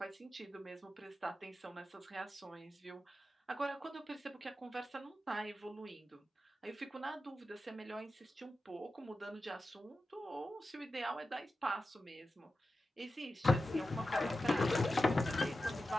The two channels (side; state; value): both; normal; correlation 0.92